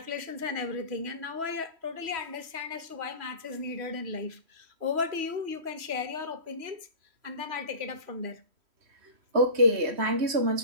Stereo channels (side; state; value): left; late; 3.1 ms